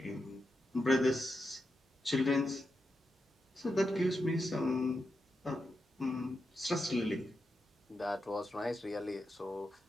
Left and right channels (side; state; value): both; normal; correlation 0.87